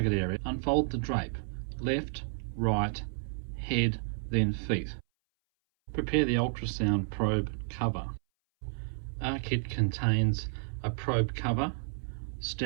area. Unfold the drape. Left, right, head, then feet. Prepare the ultrasound probe cover. Our kit contains a probe cover,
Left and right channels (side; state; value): left; silent; 57 dB below the other